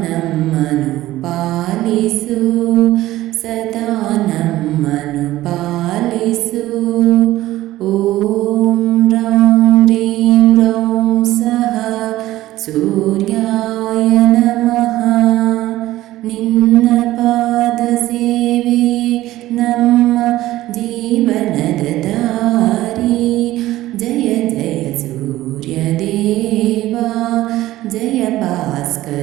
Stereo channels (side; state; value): left; quieter; 15.8 dB